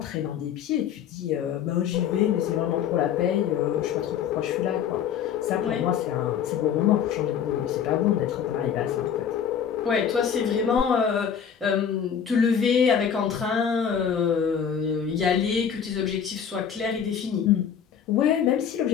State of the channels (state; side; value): quieter; right; 8.0 dB